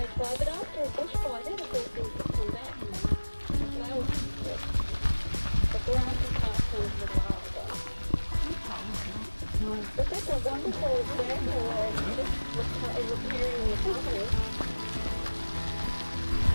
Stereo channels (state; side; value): inverted; both; correlation -1.00